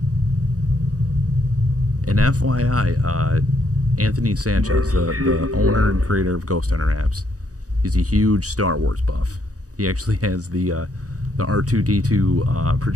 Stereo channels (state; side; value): late; left; 0.67 ms